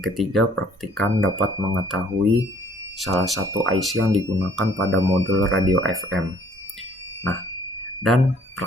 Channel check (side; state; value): both; normal; correlation 0.60